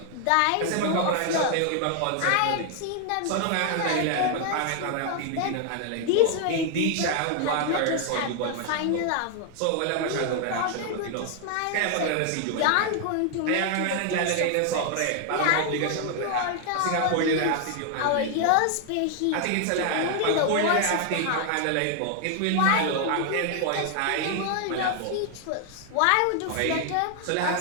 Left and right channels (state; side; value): different; both; correlation 0.00